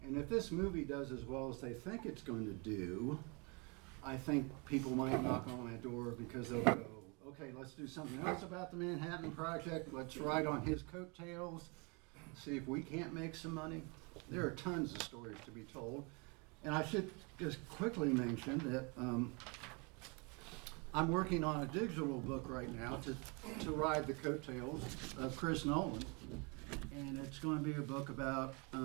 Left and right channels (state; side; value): quieter; left; 31.1 dB